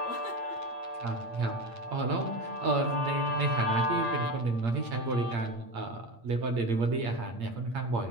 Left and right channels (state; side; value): late; left; 8.7 ms